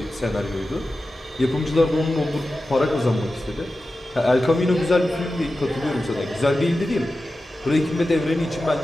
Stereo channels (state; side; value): normal; both; correlation 0.93